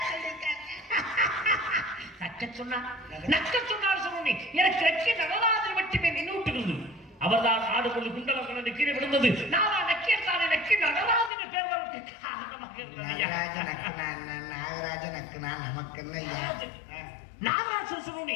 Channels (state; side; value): drops out; right; at 11.3 s